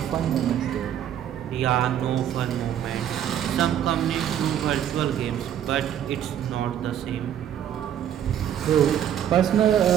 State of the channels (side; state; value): left; quieter; 10.1 dB